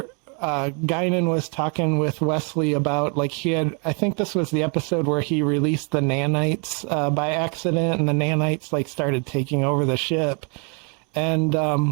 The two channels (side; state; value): left; quieter; 36.3 dB